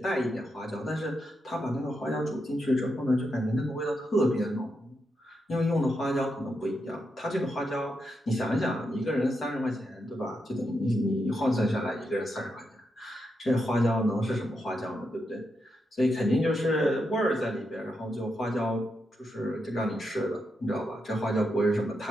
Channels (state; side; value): normal; both; correlation 0.84